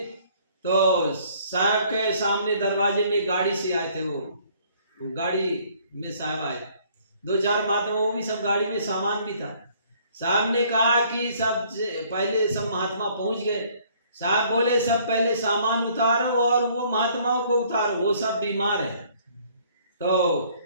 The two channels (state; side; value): inverted; both; correlation -0.60